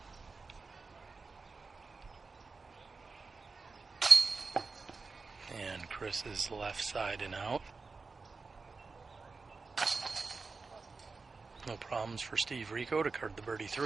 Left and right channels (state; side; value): quieter; left; 4.3 dB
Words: And Chris's left side and out. No problems for Steve Rico to card the birdie